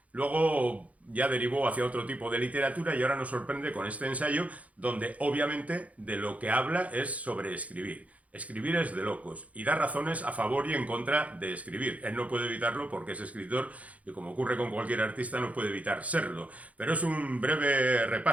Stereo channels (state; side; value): late; left; 0.068 ms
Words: Luego ya derivó hacia otro tipo de literatura y ahora nos sorprende con este ensayo donde obviamente de lo que habla es sobre escribir. Escribir es de locos y da razones a favor y en contra de escribir. Él no puede evitarlo porque es escritor y, como ocurre con cualquier artista, no puede evitar serlo. Pero es un breve